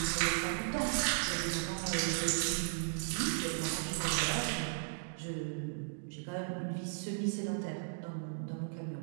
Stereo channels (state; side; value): silent; left; digital silence